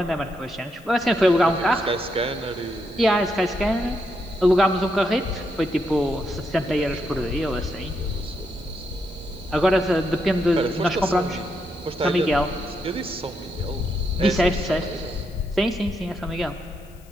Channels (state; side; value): noise; left; hiss, 28 dB below the sound